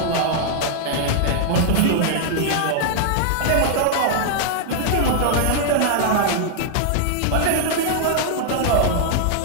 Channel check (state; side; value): different; both; correlation -0.01